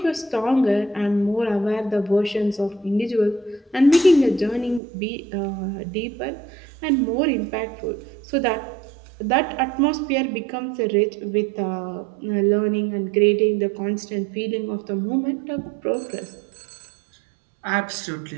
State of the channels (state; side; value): drops out; left; at 4.8 s